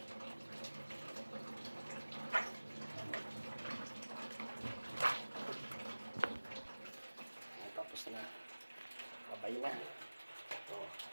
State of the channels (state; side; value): inverted; both; correlation -1.00